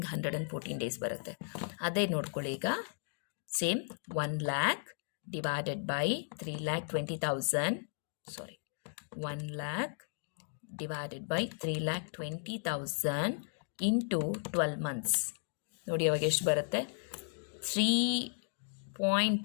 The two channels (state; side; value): silent; right; digital silence